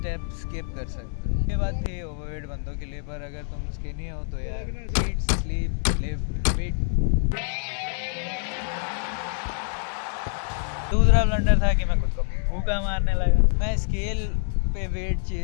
स्किप कर सकते हो। ये बात थी ओवरवेट बंदों के लिए, पर अगर तुम स्किनी हो तो यार ईट, स्लीप, लिफ्ट, वेट। दूसरा ब्लंडर था कि मैं खुद को भूखा मारने लगा। मैं स्केल पे वेट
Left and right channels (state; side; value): silent; right; 61 dB below the other